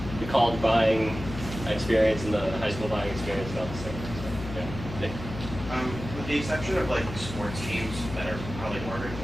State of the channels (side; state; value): left; noise; hum, 9 dB below the sound